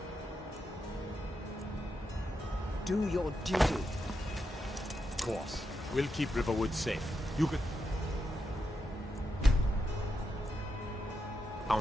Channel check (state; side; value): normal; both; correlation 0.85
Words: do your duty. Of course. We'll keep Riverwood safe. You can...